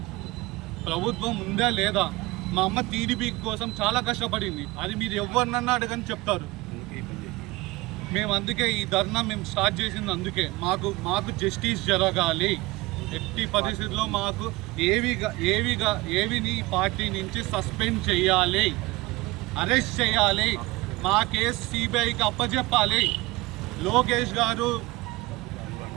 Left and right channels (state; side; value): quieter; left; 21.0 dB